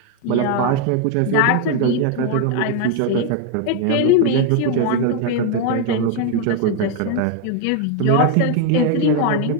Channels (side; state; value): both; different; correlation 0.01